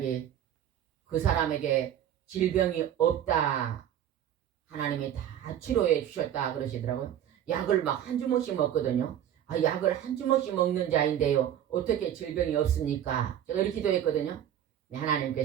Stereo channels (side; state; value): left; quieter; 10.5 dB